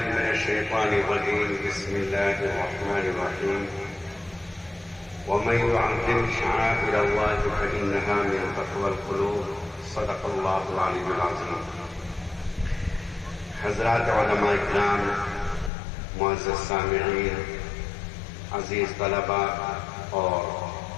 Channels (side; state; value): right; drops out; at 15.7 s